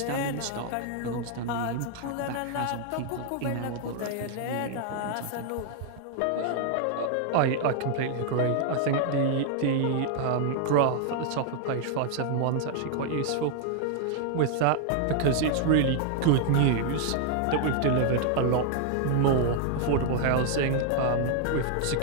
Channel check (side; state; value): both; different; correlation 0.00